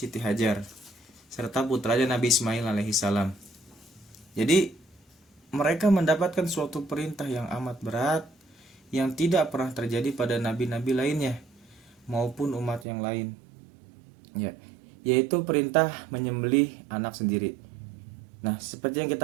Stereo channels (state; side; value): drops out; left; at 12.9 s